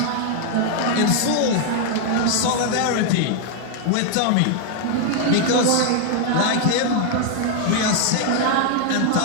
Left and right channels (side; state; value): both; different; correlation 0.00